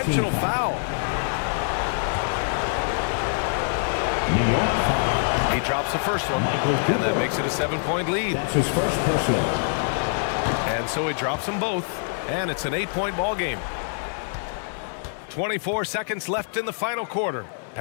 foul. New York foul. He drops the first one, and that makes it a 7-point lead. That's his first personal. And so he drops them both, and it's an 8-point ball game. 24 seconds left in the final quarter.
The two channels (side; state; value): right; silent; digital silence